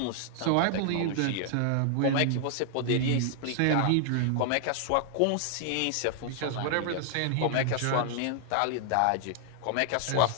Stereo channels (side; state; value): both; different; correlation 0.00